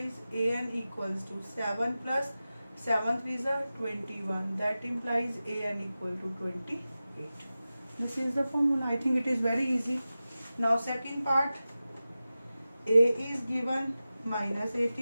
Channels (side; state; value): both; inverted; correlation -0.95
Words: AN equals to 7 plus 7 is 21. That implies AN equal to 28. This is the formula. I think it is very easy. Now second part, A is given minus